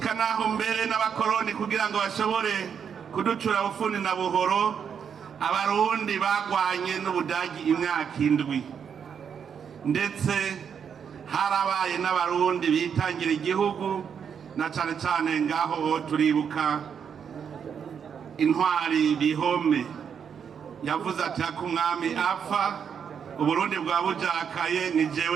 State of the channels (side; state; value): left; quieter; 7.4 dB